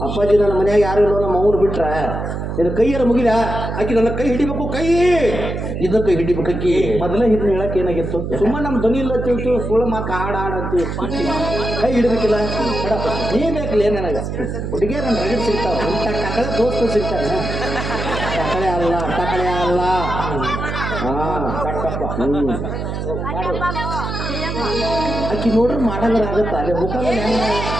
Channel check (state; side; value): noise; right; hum, 4 dB below the sound